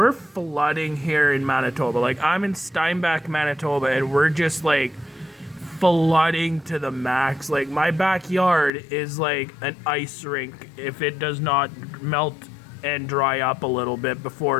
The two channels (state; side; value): drops out; right; at 8.7 s